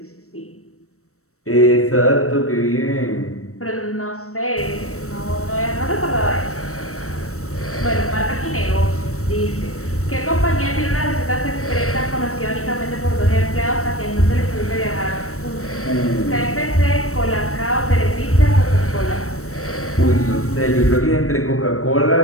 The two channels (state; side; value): late; right; 0.64 ms